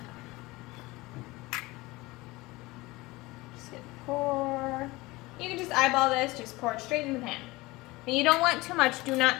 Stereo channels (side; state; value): right; quieter; 21.2 dB